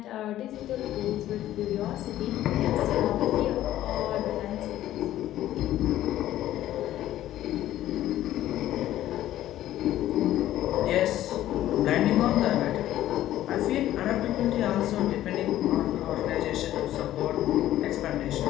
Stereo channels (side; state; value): right; quieter; 13.4 dB